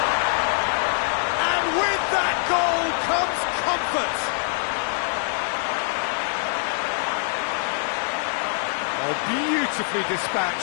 And with that goal comes comfort. Oh, beautifully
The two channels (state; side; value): silent; right; digital silence